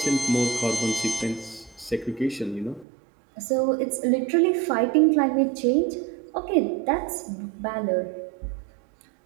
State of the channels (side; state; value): left; drops out; at 2.9 s